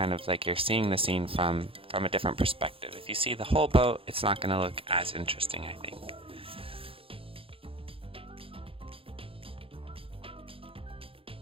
of like you're seeing the scene from a different perspective. If you see the whole boat, it's not going to look as interesting, I think.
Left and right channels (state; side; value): late; left; 0.27 ms